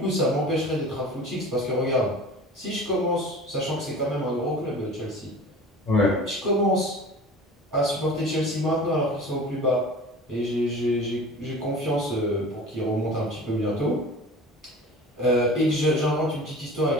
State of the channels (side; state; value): both; normal; correlation 0.40